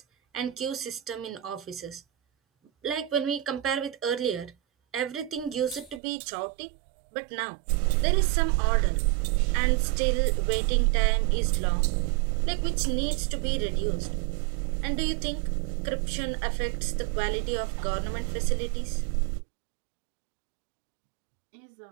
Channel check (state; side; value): drops out; left; at 6.0 s